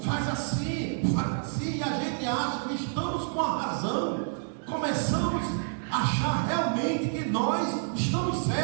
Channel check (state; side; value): silent; left; 59 dB below the other